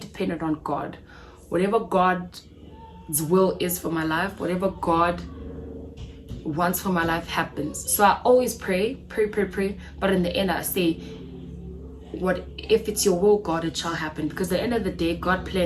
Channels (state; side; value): identical; both; correlation 1.00